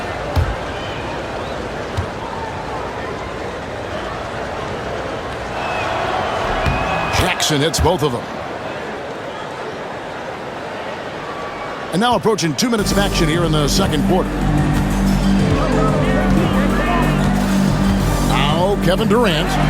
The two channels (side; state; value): both; identical; correlation 1.00